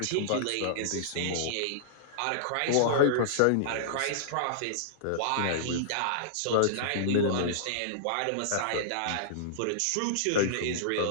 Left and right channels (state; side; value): different; both; correlation -0.02